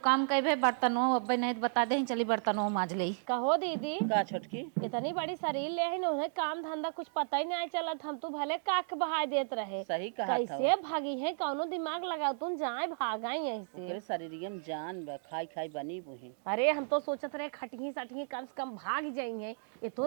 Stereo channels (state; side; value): silent; left; digital silence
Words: काम कहे बर्तनों अब नहीं बता दे चली बर्तनों माज ले कहो दीदी का छोटकी इतनी बड़ी शरीर ले है उन्हें काम धंधा कुछ पता ही नहीं चलत हम तो भले काक बहाय देत रहे सही कहा कैसे भागी है कौनो दिमाग लगाओ तुम जाए भागाई यहीं से तेरे शरीर में जान बा खाई खाई बनी बुही अरे हम तो सोचत रहे खटही सटही कम से कम भाग जाएंगे ये तो